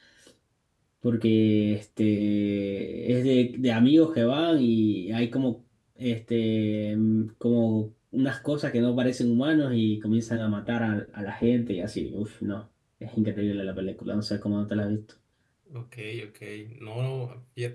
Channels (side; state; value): both; identical; correlation 1.00